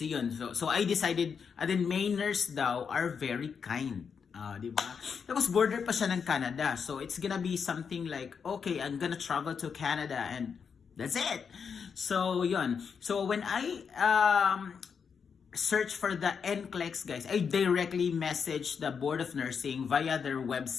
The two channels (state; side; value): quieter; right; 6.4 dB